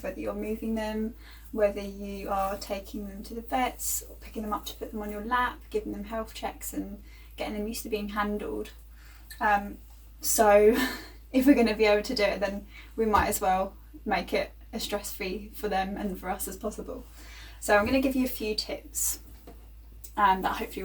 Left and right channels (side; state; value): both; identical; correlation 1.00